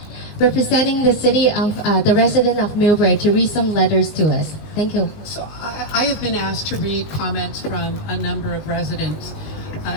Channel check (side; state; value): right; late; 19 ms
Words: representing the city of the resident of MILLBRAE, to read some letters to us. Thank you. So I have been asked to read comments from a number of residents.